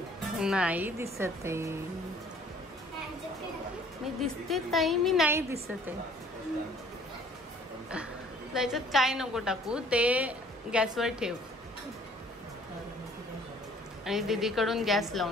नाही दिसत आहे मी. दिसते ताई, मी नाही दिसत आहे. त्याच्यात काय नको टाकू, ते गॅसवर ठेव आणि दीदीकडून गॅस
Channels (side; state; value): both; normal; correlation 0.55